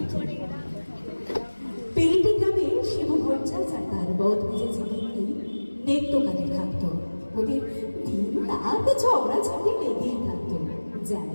পেরিটি গ্রামে শিবু ভট্টাচার্য আর তার বদ মেজেছে কিন্তু নেত্যকালে থাকতো। ওদের দিন রাত ঝগড়াঝাটি লেগেই থাকতো,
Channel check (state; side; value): inverted; both; correlation -1.00